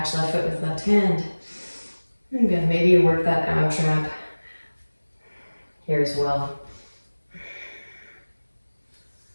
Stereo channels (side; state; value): both; inverted; correlation -1.00